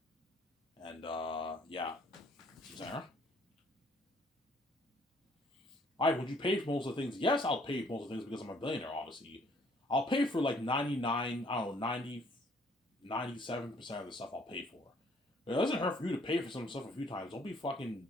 and yeah. Sarah, all right. Would you pay for most of the things? Yes, I'll pay for most of the things because I'm a billionaire. Obviously, I'll pay for like 99. I don't know 97% of the stuff I'll pay for. It doesn't hurt for you to pay for some stuff a few times. Don't be fucking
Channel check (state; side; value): normal; both; correlation 0.62